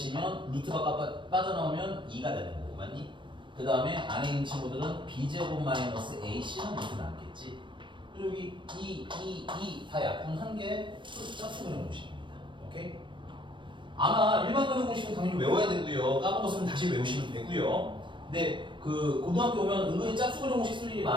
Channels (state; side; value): late; left; 0.23 ms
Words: 루트가 빠져나오면 2가 되는 거고, 맞니? 그 다음에 안에 있는 친구들은 b제곱 마이너스 ac는 루트 남겠지. 그리고 여기 2 다 약분한 게 짝수 근의 공식입니다. 오케이? 아마 일반 근의 공식은 당연히 외워야 되고요. 까먹었으면 다시 외우시면 되고요. 근데 그 고등학교 오면 은근히 짝수 근의 공식 쓸 일이